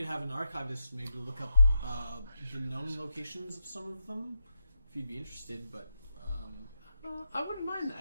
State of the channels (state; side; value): inverted; both; correlation -0.86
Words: have an archivist maybe look up the known locations of some of them if you'd be interested. But I wouldn't mind